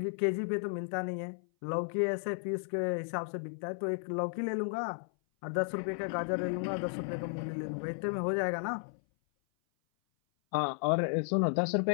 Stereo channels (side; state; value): right; silent; 55 dB below the other